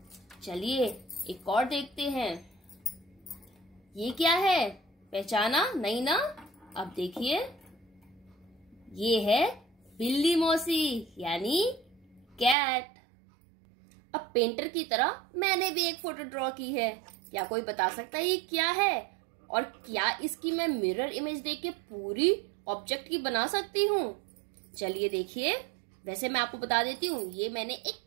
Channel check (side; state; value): left; drops out; at 12.6 s